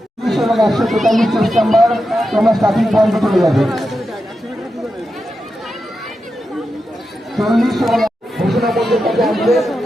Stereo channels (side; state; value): both; normal; correlation 0.89